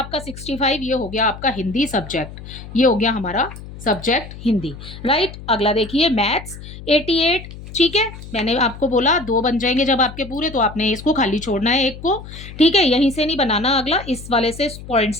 65। ये हो गया आपका हिंदी सब्जेक्ट, ये हो गया हमारा सब्जेक्ट हिंदी, राइट। अगला देखिए मैथ्स 88। ठीक है, मैंने आपको बोला 2 बन जाएंगे जब आपके पूरे, तो आपने इसको खाली छोड़ना है एक को। ठीक है, यहीं से नहीं बनाना, अगला इस वाले से पॉइंट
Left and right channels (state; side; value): noise; left; hum, 14 dB below the sound